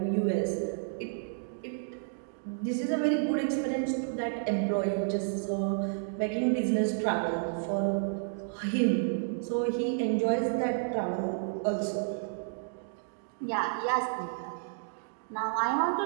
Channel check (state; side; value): silent; left; digital silence